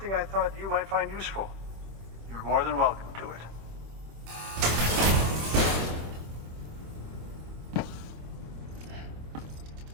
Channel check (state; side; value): late; left; 26 ms